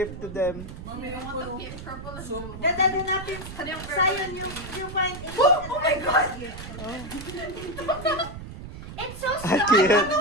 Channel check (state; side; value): noise; right; rumble, 11 dB below the sound